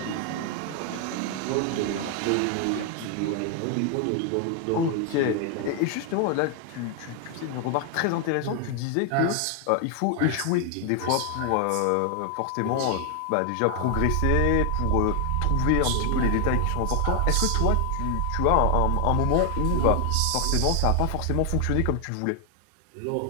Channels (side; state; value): both; different; correlation 0.00